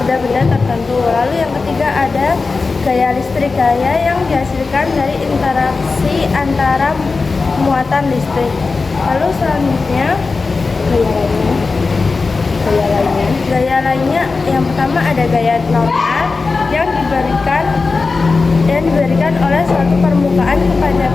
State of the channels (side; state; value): right; quieter; 4.1 dB